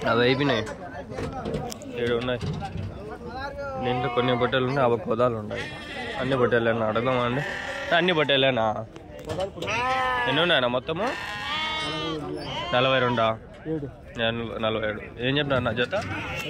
అవి అయిపోయినాయి. 7 ఉన్నాయి. దీంట్లో కొన్ని బొట్టెలు ఉన్నాయి. 50 పొదాలు ఉన్నాయి. అన్ని బొట్టెలేనా? అడగదామా అండి? అన్ని బొట్టెలేనా? ఎన్ని ఉన్నాయన్నా మొత్తము? 42. 47. ఏం చెప్పినారు నా జత?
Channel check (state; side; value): identical; both; correlation 1.00